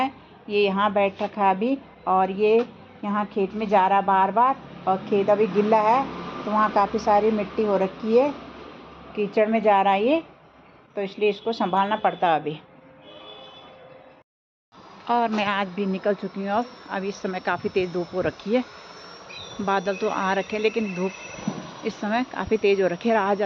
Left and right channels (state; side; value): identical; both; correlation 1.00